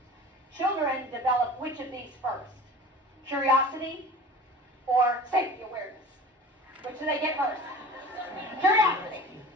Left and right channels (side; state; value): both; normal; correlation 0.39